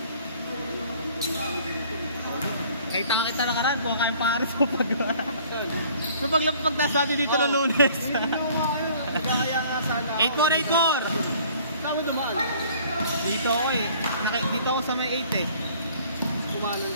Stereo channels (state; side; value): inverted; both; correlation -0.54